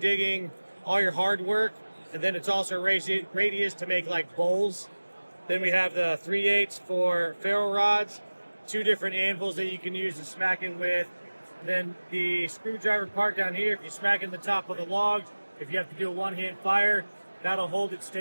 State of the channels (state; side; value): inverted; both; correlation -1.00